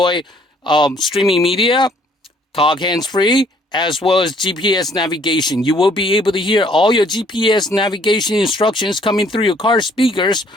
streaming media, talk hands-free, as well as GPS navigation. You will be able to hear all your GPS navigation instructions coming through your car speakers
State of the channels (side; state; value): both; normal; correlation 0.61